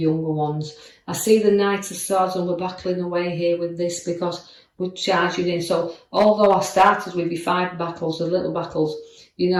ones. I see the Knight of Swords, and we're battling away here with this because we're charging in. So although I started with your 5 battles, the little battles, you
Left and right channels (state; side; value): identical; both; correlation 1.00